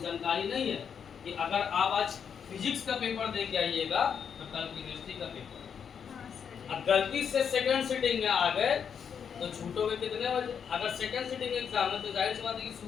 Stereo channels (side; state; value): right; quieter; 7.3 dB